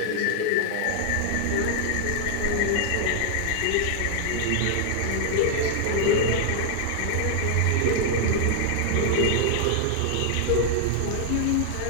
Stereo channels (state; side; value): different; both; correlation 0.00